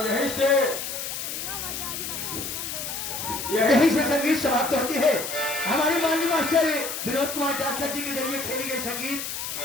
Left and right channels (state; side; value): noise; left; hiss, 5 dB below the sound